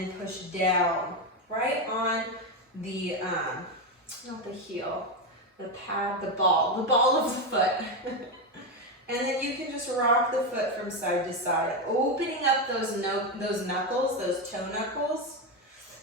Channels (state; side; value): normal; both; correlation 0.10